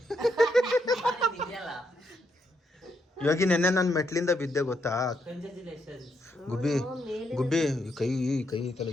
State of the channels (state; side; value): normal; both; correlation 0.78